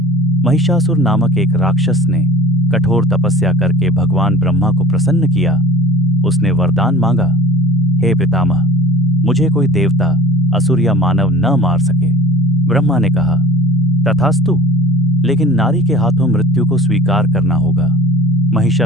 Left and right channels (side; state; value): both; normal; correlation 0.43